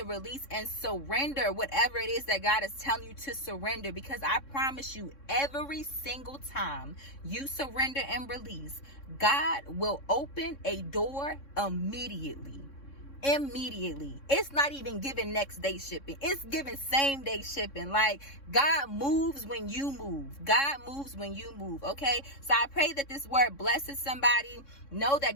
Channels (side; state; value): right; late; 3.6 ms